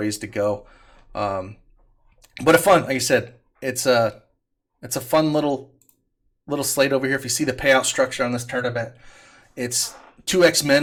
to go. But a fun, like I said, it's a fun little slate over here. If you see the payout structure on this tournament, it's 2x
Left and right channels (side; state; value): both; identical; correlation 1.00